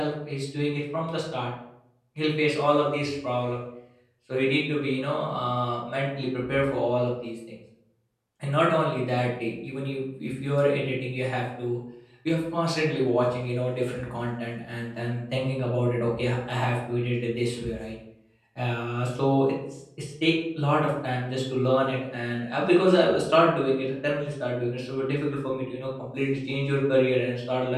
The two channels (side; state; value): both; identical; correlation 1.00